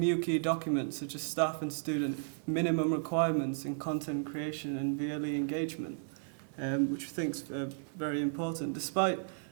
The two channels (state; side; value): silent; left; 55 dB below the other